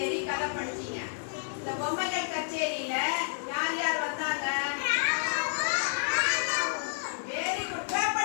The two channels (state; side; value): silent; right; digital silence